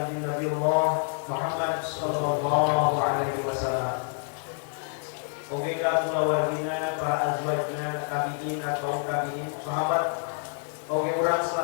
Nabi Allah Muhammad sallallahu alaihi wasallam. Oke ka kulawargina, para azwajna, tabi'in atau tabi'in, sahabat. Oke urang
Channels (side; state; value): right; silent; 60 dB below the other